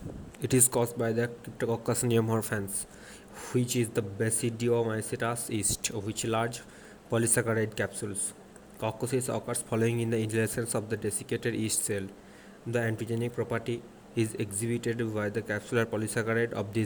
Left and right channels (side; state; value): both; identical; correlation 1.00